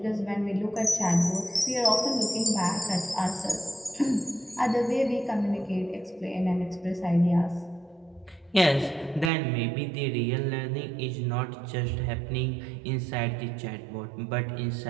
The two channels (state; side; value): drops out; left; at 9.3 s